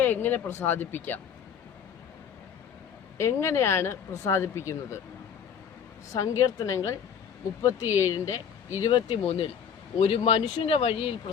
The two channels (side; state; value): right; quieter; 7.6 dB